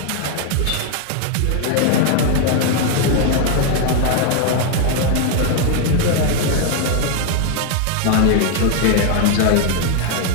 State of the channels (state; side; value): different; both; correlation 0.00